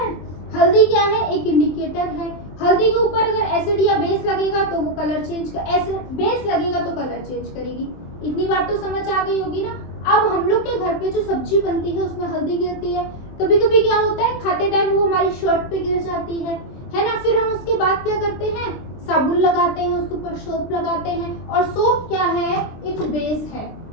हल्दी क्या है, एक इंडिकेटर है। हल्दी के ऊपर अगर एसिड या बेस लगेगा तो वो कलर चेंज कर, एसिड बेस लगेगा तो कलर चेंज करेगी। इतनी बात तो समझ आ गई होगी ना। अब हम लोग के घर पे जो सब्जी बनती है उसमें हल्दी गिरती है, कभी कभी क्या होता है खाते टाइम वो हमारी शर्ट पे गिर जाती है ना। फिर हम उसके बाद क्या करते हैं, साबुन लगाते हैं, उसके ऊपर सोप लगाते हैं, और सोप क्या है, एक बेस है।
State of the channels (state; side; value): late; right; 23 ms